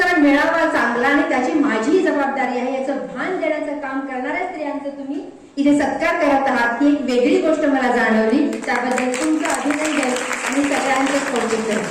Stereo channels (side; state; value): both; identical; correlation 1.00